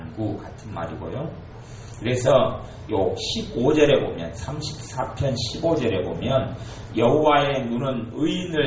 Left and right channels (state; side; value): identical; both; correlation 1.00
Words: 같은 말이고요. 그래서 요 15절에 보면, 34편 15절에 보면 여호와의 눈은